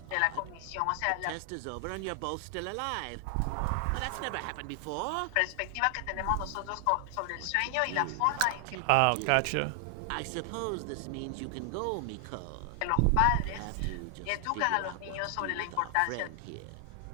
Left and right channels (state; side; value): different; both; correlation 0.00